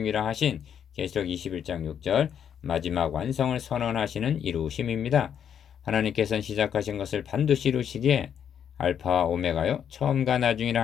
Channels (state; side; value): quieter; right; 8.5 dB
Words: 하신 계시록 21장 6절 마지막 완성을 선언하시는 이루심입니다. 하나님께서는 시작하신 것을 반드시 이루시기에 알파와 오메가요 처음과 나중이라